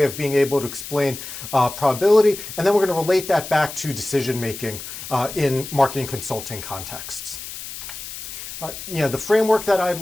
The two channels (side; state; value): left; noise; hiss, 10 dB below the sound